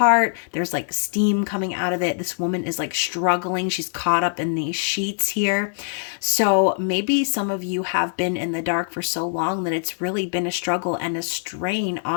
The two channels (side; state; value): right; silent; 63 dB below the other